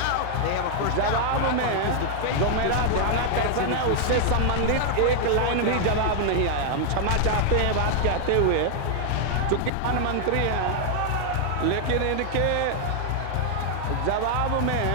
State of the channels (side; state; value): both; different; correlation 0.00